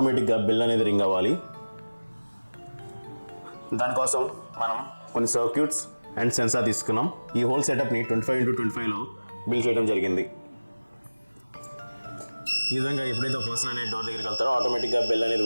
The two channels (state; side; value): inverted; both; correlation -1.00